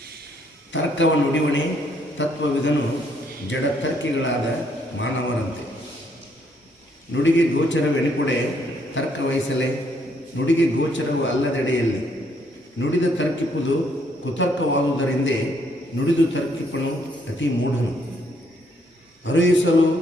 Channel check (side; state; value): both; normal; correlation 0.70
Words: ತರ್ಕವ ನುಡಿವಣೆ ತತ್ವವಿದನು ಜಡತರ್ಕಿಗಳಾದ ಮಾನವರಂತೆ. ನುಡಿಗೆ ಗೋಚರವೆನಿಪುಡೆ ತರ್ಕ ವಹಿಸಲೆ, ನುಡಿಗೆ ಗೋಚರವು ಅಲ್ಲದೆಡೆಯಲ್ಲಿ ನುಡಿದ ತರ್ಕಿಪುದು ಕುತರ್ಕವಾದುದರಿಂದೇ ನುಡಿದು ತರ್ಕಿಪನು ಅತಿ ಮೂಢನು. ಅರುಯಿಸಲು